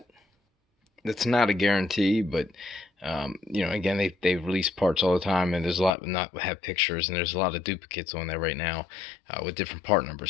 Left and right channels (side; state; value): right; drops out; at 6.0 s